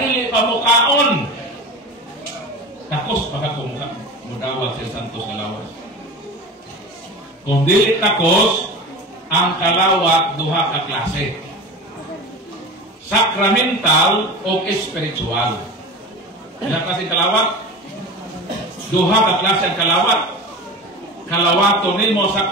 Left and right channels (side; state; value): both; normal; correlation 0.31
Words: pamukaon. Takos baka kumuka mudawat sa santos nga lawas. Kung dili takos, ang kalawat duha ka klase. Sacramental o spiritual. Ilang klase kalawat? Duha ka klase ang kalawat. Kalawato nimo